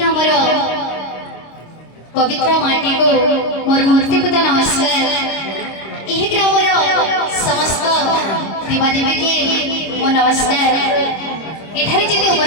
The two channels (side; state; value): right; late; 26 ms